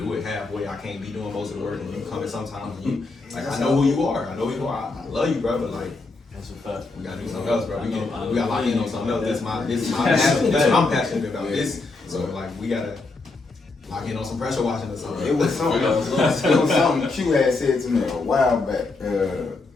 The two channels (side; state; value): right; quieter; 3.6 dB